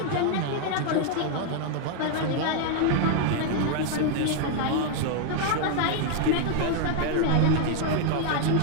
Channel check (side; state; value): both; different; correlation 0.00